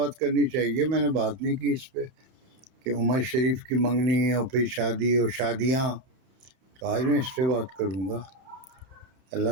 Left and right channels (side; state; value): left; late; 32 ms